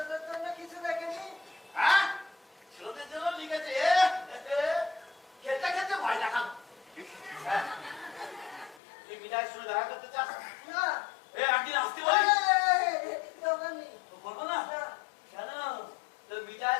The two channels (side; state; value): right; drops out; at 8.8 s